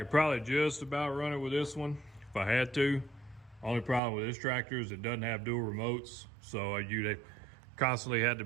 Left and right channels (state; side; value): drops out; left; at 4.0 s